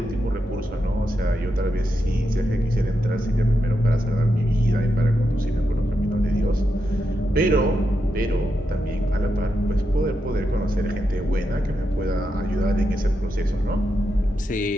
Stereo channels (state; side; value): normal; both; correlation 0.85